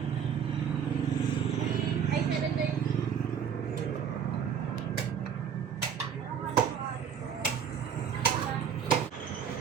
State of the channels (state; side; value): quieter; left; 7.7 dB